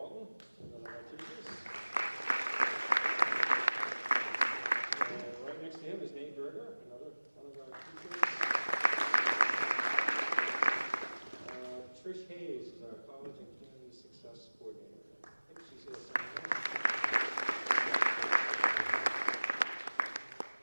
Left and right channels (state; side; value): inverted; both; correlation -1.00